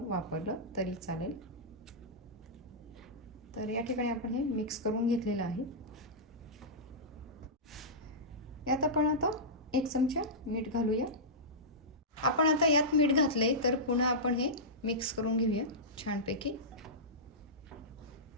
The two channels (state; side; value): normal; both; correlation -0.14